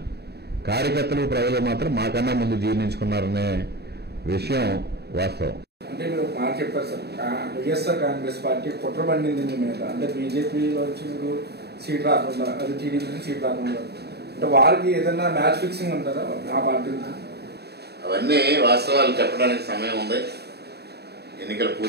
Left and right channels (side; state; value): left; late; 0.48 ms